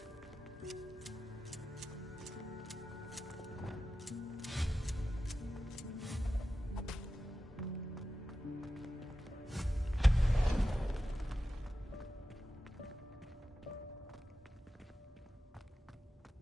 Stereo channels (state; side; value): normal; both; correlation 0.92